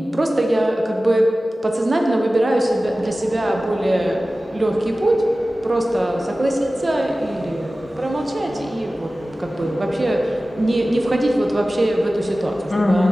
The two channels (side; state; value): both; normal; correlation 0.96